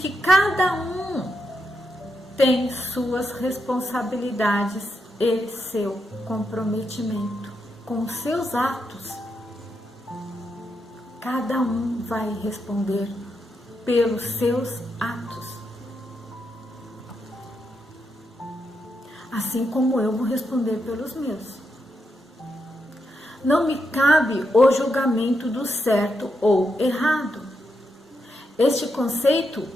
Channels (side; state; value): both; normal; correlation 0.83